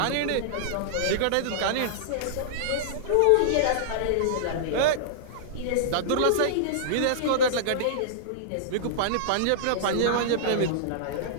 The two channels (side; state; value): both; different; correlation -0.02